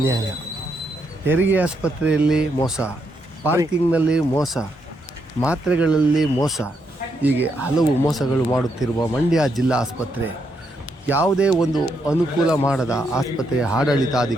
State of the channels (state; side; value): normal; both; correlation 0.78